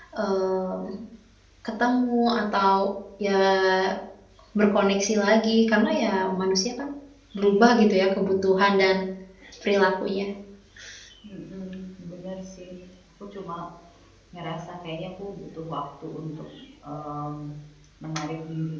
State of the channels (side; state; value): both; identical; correlation 1.00